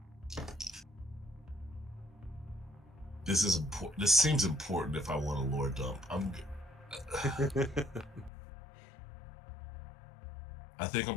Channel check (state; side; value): drops out; right; at 8.3 s